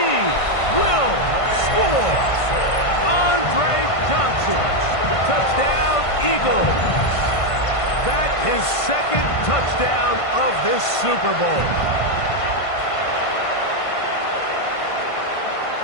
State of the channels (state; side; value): late; right; 1.5 ms